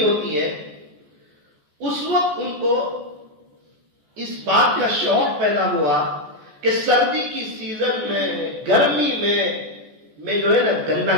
ہوتی ہے, اس وقت ان کو اس بات کا شوق پیدا ہوا کہ سردی کی سیزن میں, گرمی میں جو ہے نا گنا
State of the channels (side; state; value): left; late; 14 ms